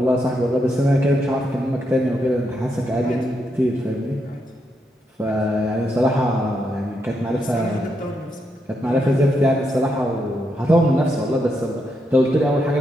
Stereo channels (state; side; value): normal; both; correlation 0.81